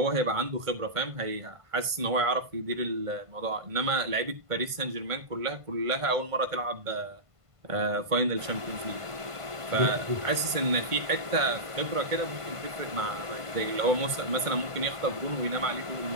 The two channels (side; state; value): left; late; 1.5 ms